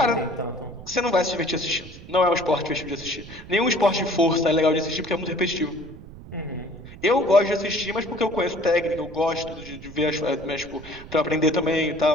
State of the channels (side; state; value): right; noise; rumble, 16 dB below the sound